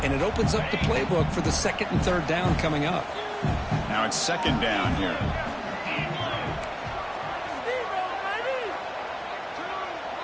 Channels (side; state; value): both; identical; correlation 1.00